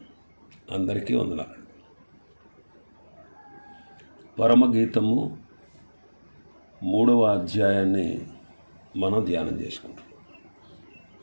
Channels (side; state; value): both; inverted; correlation -1.00